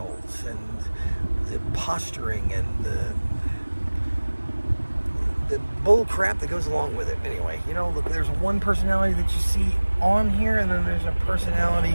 and the posturing and the bull crap that goes along with it. Anyway, look, there's one personality that you see on here, and then there's a personality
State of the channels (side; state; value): both; inverted; correlation -1.00